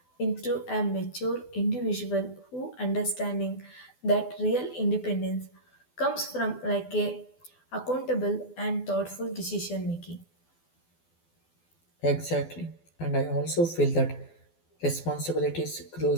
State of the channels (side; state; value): right; late; 12 ms